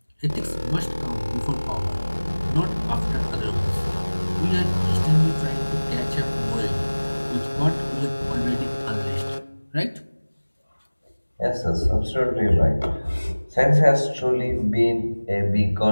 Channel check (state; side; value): inverted; both; correlation -1.00